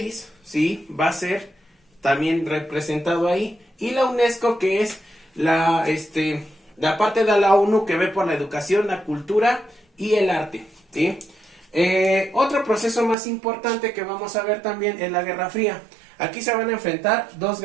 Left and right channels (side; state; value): left; drops out; at 13.2 s